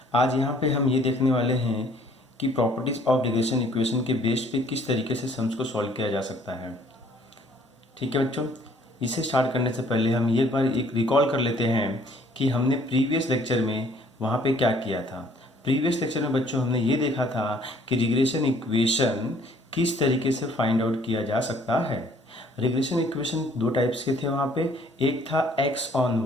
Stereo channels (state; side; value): normal; both; correlation 0.60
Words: आज यहाँ पे हम ये देखने वाले हैं कि प्रॉपर्टीज ऑफ रिग्रेशन इक्वेशन के बेस पे किस तरीके से सम्स को सॉल्व किया जा सकता है। ठीक है बच्चों, इसे स्टार्ट करने से पहले हम एक बार रिकॉल कर लेते हैं कि हमने प्रीवियस लेक्चर में वहाँ पे क्या किया था। प्रीवियस लेक्चर में बच्चों हमने ये देखा था कि रिग्रेशन इक्वेशन किस तरीके से फाइंड आउट किया जा सकता है। रिग्रेशन इक्वेशन दो टाइप्स के थे वहाँ पे। एक था x ऑन